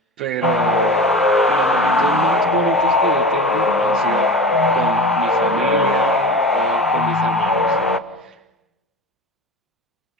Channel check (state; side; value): normal; both; correlation 0.32